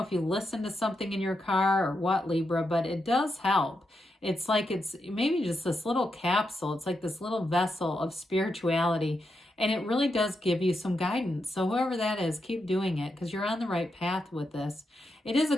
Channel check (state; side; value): normal; both; correlation 0.84